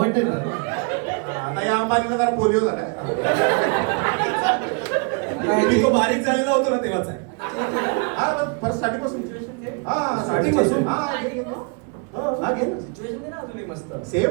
ना. आता या अंबानीला जरा पोलिओ झालाय. मी तो बारीक झालेला होतो ना तेव्हाच आहे. हा पण फर्स्ट स्टार्टिंग पासून हा स्टार्टिंग पासून हा घे ना. सिच्युएशन दे ना अजूनही मस्त.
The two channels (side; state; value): left; quieter; 35.2 dB